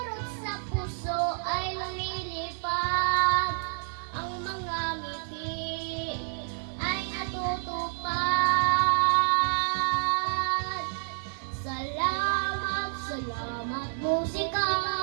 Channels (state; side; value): silent; left; 58 dB below the other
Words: sa puso ay lumilipad, ang mga ngiti ay natutupad. Salamat, salamat musika,